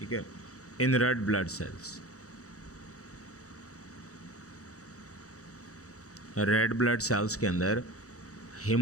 है, in red blood cells. Red blood cells के अंदर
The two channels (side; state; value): right; late; 0.65 ms